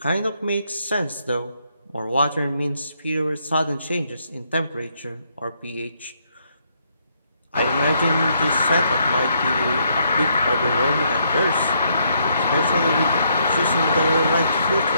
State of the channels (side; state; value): both; inverted; correlation -0.73